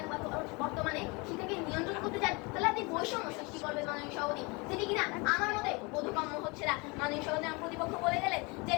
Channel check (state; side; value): quieter; right; 28.0 dB